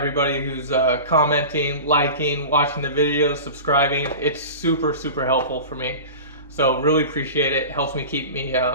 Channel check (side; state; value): both; inverted; correlation -0.32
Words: who's commenting, liking, watching the videos, subscribing. It's super, super helpful for me. So really appreciate it. Helps me keep me